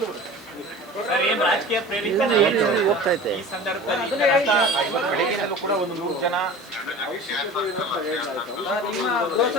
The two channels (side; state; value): both; normal; correlation 0.38